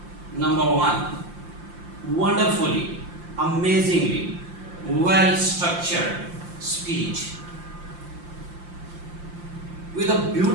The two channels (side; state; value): left; late; 5.7 ms